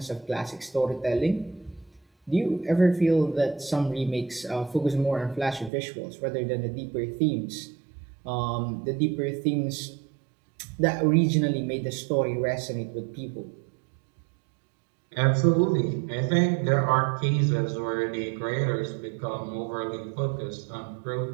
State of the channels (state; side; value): drops out; left; at 5.7 s